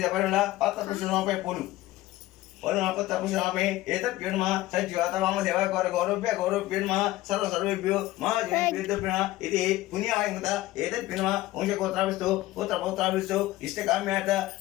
పరిమళ పత్ర పుష్పమపై పూలు పత్ర పుష్పమపై ఏతత్ బినుమ సజ్జాత వామ దేవ గౌరవ్య నమః సర్వేభ్యో మహాజనేభ్యో ఇది పుణ్యాయంత ఏతత్ బినుమ వంశగోత్రాభిస్తు పుత్ర పౌత్రాభిస్తు ఇష్టకామ్యాత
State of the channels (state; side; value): quieter; right; 17.0 dB